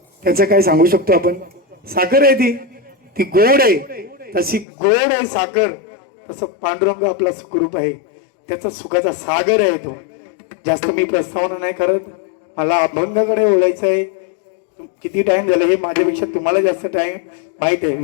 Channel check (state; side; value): drops out; right; at 4.7 s